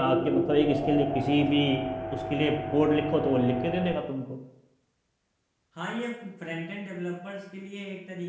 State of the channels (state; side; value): identical; both; correlation 1.00